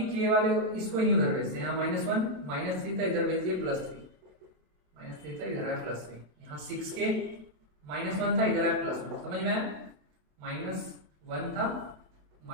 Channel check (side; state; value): left; late; 27 ms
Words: k वाले इसको ही उधर भेजते हैं, यहाँ -1 -3 था, इधर भेज दिए +3, -3 था इधर है +3, यहाँ 6k -1 था इधर है +1, समझ में आया, -1 था